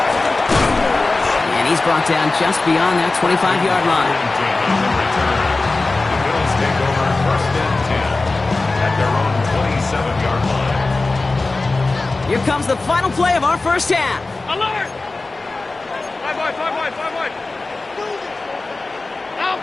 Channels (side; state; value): right; quieter; 3.4 dB